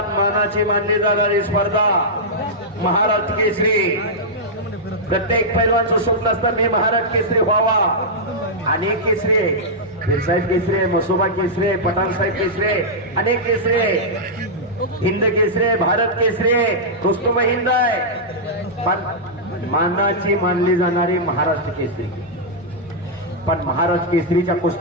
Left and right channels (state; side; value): normal; both; correlation -0.09